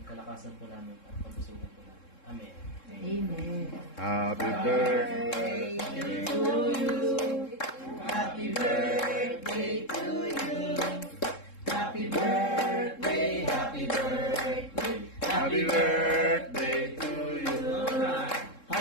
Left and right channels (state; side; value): late; right; 3.7 ms